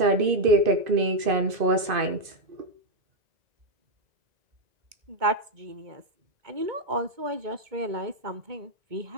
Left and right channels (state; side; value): late; left; 2.5 ms